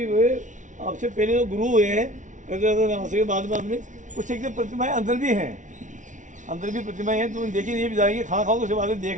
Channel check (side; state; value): left; late; 0.37 ms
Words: हुए आपसे पहले जो गुरु हुए हैं, बाद में कुछ एक प्रतिमाएं अंदर भी हैं, अंदर भी प्रतिमाएं हैं। तो देखिए, ये भी जाएंगे, खाना खाओ तो उसके बाद